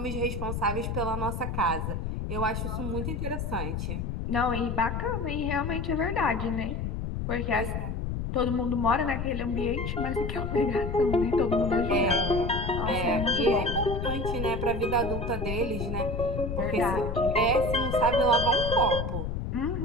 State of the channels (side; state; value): left; noise; rumble, 3 dB below the sound